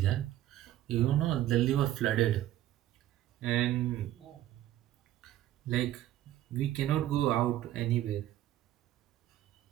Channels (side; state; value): left; quieter; 13.4 dB